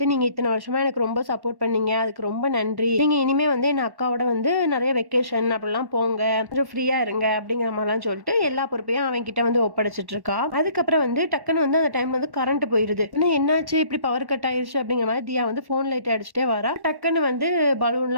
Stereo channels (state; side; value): late; left; 1.1 ms